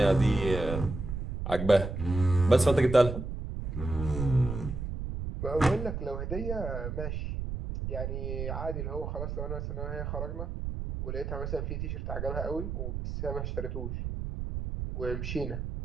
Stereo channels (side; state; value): right; noise; rumble, 4 dB below the sound